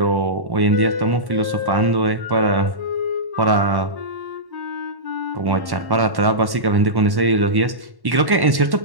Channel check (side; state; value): left; late; 1.1 ms